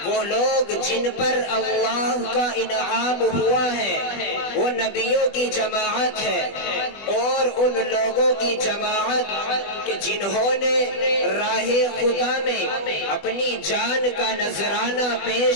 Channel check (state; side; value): late; right; 20 ms